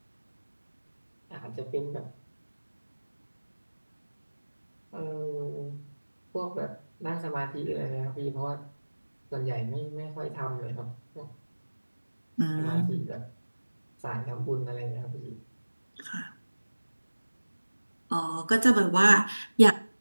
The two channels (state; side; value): inverted; both; correlation -1.00